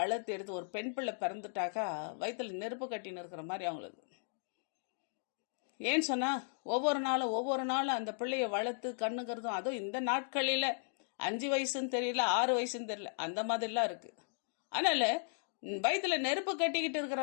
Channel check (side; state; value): right; silent; digital silence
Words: எடுத்து, ஒரு பெண் பிள்ளை பிறந்துட்டாக்கா வயிற்றுல நெருப்பு கட்டின்னு இருக்கிற மாதிரி அவங்களுக்கு. ஏன்னு சொன்னா ஒவ்வொரு நாளும் அந்த பிள்ளைய வளர்த்து கண்ணுங்கிறதும், அதுவும் இந்த நாட்களில் 5 வயசுன்னு தெரியல, 6 வயசுன்னு தெரியல, அந்த மாதிரிலாம் இருக்கு. அதனால வயிற்றுல நெருப்பு கட்டிக்கிட்டு இருக்கிற